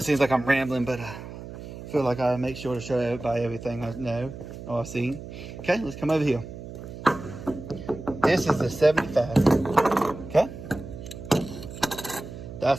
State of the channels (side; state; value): right; noise; hum, 12 dB below the sound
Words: seems like I'm rambling, but I feel like I make sure to show everybody everything I know or I've seen. Okay, let's come over here. This is the 75. Okay.